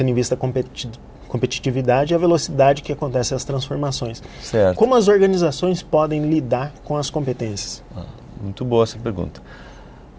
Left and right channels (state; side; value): identical; both; correlation 1.00